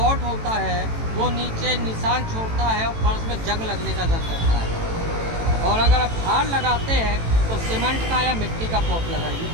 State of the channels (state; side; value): late; left; 18 ms